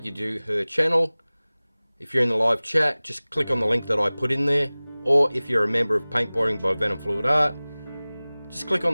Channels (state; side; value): inverted; both; correlation -0.99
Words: you to her channel. If you're in the live chat, just click on the link that I put in there. Or if you're a member of Paintballing by venomfluidart, just click on